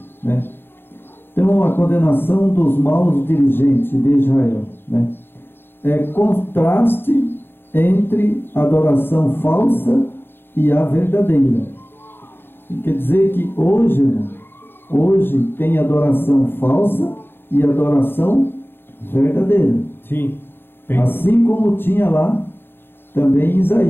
né? Então a condenação dos maus dirigentes de Israel, né, é contraste entre a adoração falsa e a verdadeira. Quer dizer que hoje, irmão, hoje tem adoração falsa e adoração verdadeira. Sim. Tem. Assim como tinha lá também em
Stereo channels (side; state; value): right; late; 0.10 ms